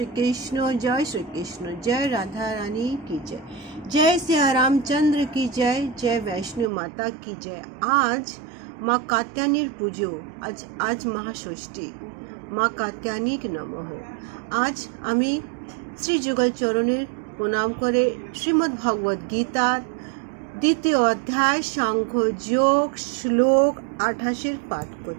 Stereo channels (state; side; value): drops out; left; at 6.7 s